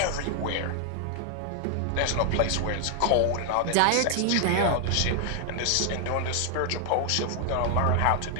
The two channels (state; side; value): different; both; correlation 0.00